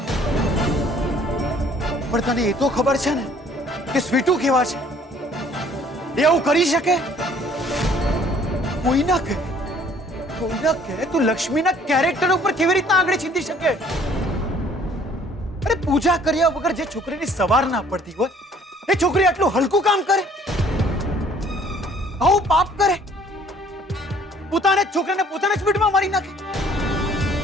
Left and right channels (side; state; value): both; normal; correlation 0.57